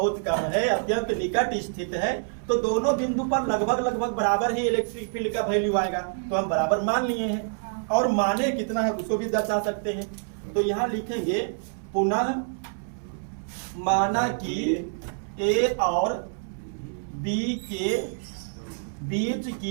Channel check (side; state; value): left; silent; 60 dB below the other